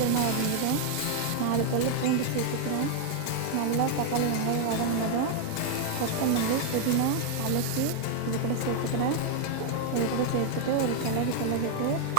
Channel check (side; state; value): both; different; correlation 0.01